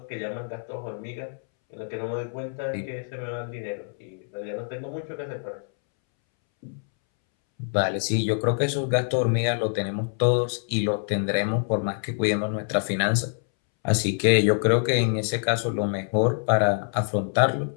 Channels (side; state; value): right; silent; 61 dB below the other